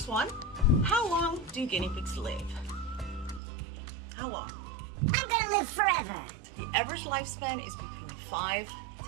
one, how long do guinea pigs live? How long? I'm gonna live forever. The average lifespan is between 5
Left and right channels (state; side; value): drops out; left; at 3.4 s